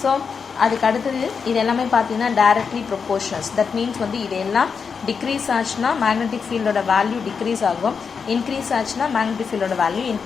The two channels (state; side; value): quieter; right; 5.8 dB